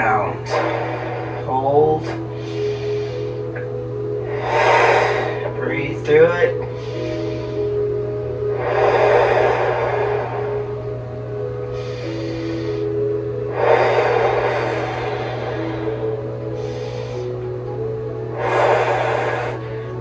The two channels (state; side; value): identical; both; correlation 1.00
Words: Hold. Breathe through it.